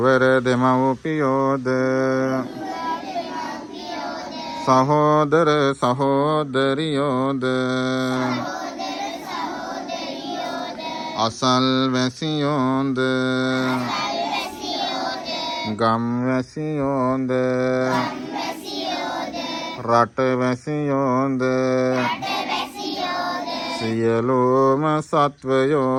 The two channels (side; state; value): both; identical; correlation 1.00